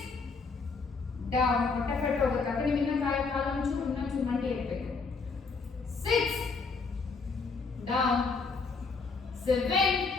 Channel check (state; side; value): quieter; right; 4.6 dB